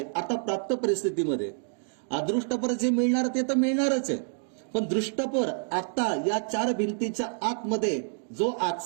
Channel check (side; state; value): left; silent; digital silence